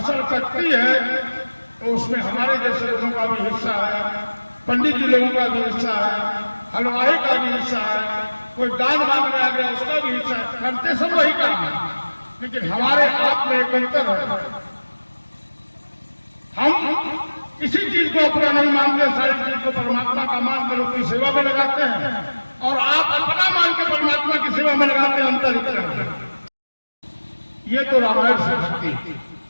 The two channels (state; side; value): inverted; both; correlation -1.00